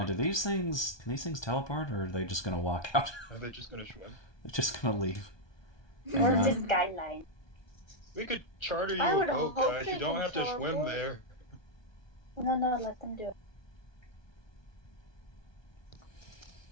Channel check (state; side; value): late; right; 1.3 ms